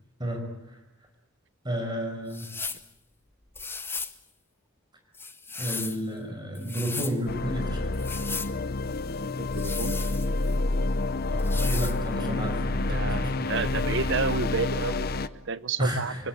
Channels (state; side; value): normal; both; correlation 0.48